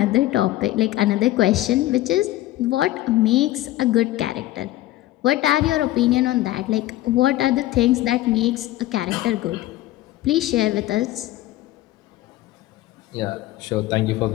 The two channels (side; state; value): right; quieter; 16.0 dB